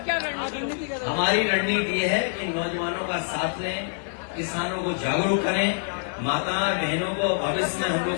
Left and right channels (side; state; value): right; silent; 56 dB below the other